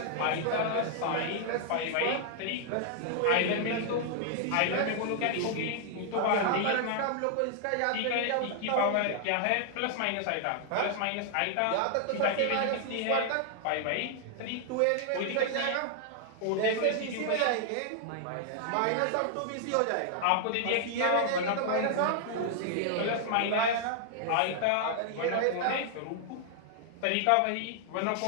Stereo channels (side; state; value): both; different; correlation 0.00